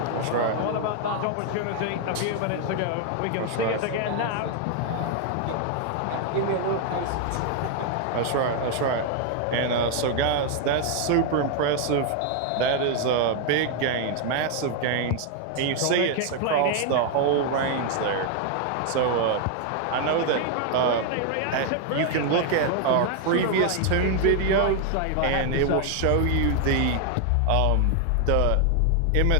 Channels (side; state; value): both; different; correlation 0.00